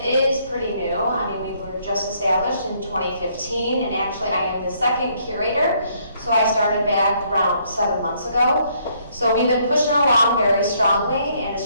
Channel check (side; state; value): both; inverted; correlation -0.68